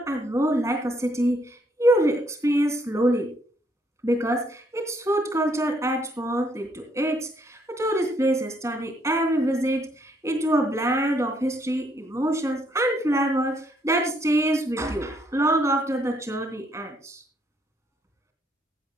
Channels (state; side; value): normal; both; correlation 0.70